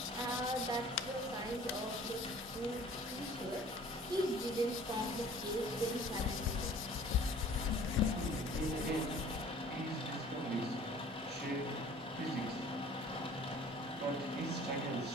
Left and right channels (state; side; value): normal; both; correlation 0.50